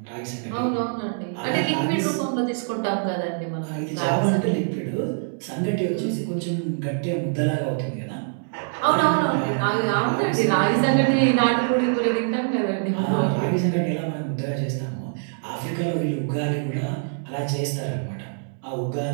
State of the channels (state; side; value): silent; left; digital silence